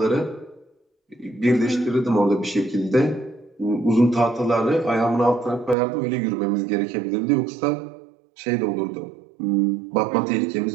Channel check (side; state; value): left; drops out; at 5.8 s